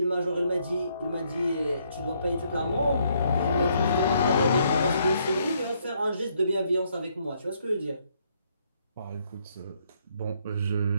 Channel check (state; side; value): inverted; both; correlation -0.71